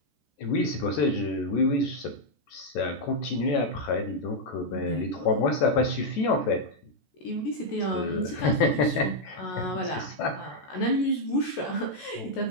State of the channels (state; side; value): late; right; 14 ms